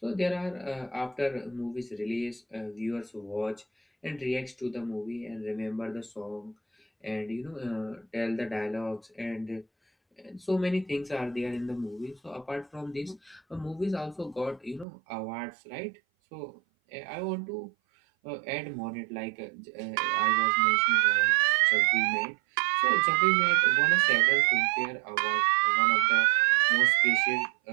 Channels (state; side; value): drops out; left; at 14.9 s